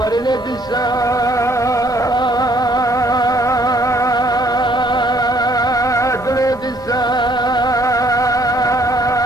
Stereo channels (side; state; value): both; normal; correlation 0.63